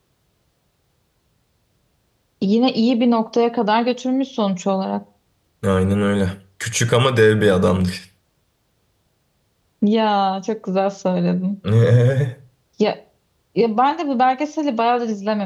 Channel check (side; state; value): both; identical; correlation 1.00